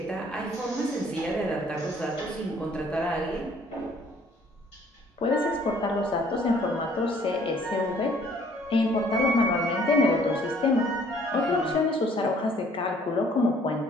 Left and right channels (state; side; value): normal; both; correlation 0.59